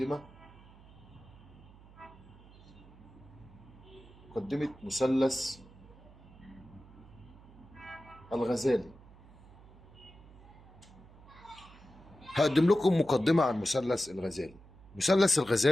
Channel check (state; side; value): noise; right; hum, 22 dB below the sound